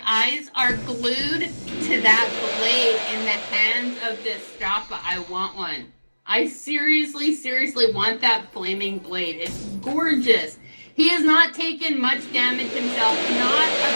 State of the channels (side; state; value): both; inverted; correlation -1.00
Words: eyes are glued to that blade in the hands of Destrafa. I want one. I seriously want that flaming blade. It's gorgeous. He has not taken much damage himself. Not a